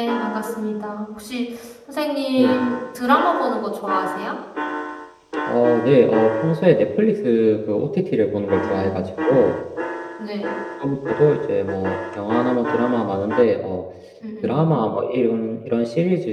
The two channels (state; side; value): identical; both; correlation 1.00